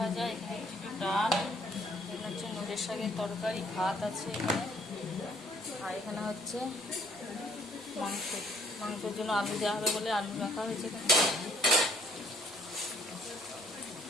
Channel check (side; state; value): right; noise; rumble, 28 dB below the sound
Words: এখানে একটু ডাল, এখানে হচ্ছে নড়ের শাকের তরকারি, ভাত আছে এখানে, আর এখানে হচ্ছে মাংসের জন্য আলু দেওয়া হবে বলে আলু রাখা হয়েছে এখানে।